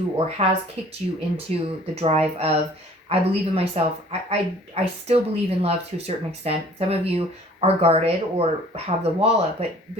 or has kicked you into the drive of, I believe in myself. I still believe in love to a certain extent. Some of you are guarded or have the wall up, but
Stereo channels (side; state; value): both; normal; correlation 0.52